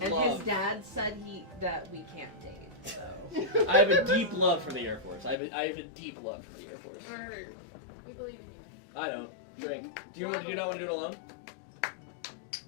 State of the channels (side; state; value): right; drops out; at 5.4 s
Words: And love. his dad said that we can't date. So I have a deep love for the Air Force. I have a deep love for the Air Force. Or- We believe in you. I know. Drink. Do you not want to do it alone?